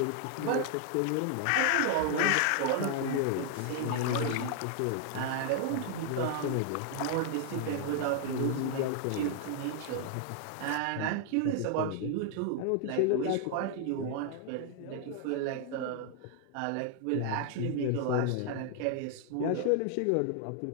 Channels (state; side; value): different; both; correlation 0.00